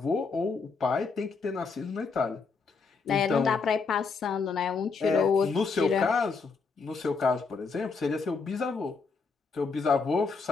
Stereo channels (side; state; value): right; quieter; 4.7 dB